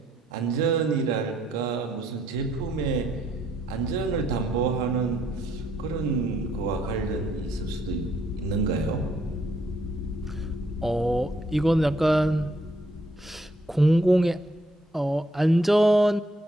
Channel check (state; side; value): normal; both; correlation 0.71